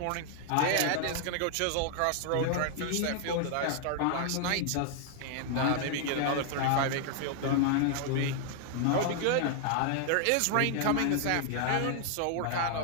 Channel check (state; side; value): different; both; correlation 0.00